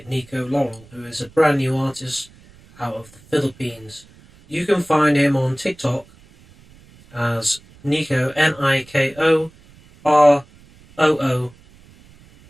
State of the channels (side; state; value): right; noise; rumble, 26 dB below the sound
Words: Nico Laurel, who is a brand new artist out of the Philippines. You can find him on TikTok as Nico, NIKOROORERU,